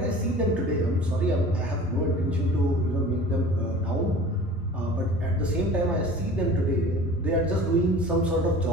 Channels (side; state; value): both; normal; correlation 0.42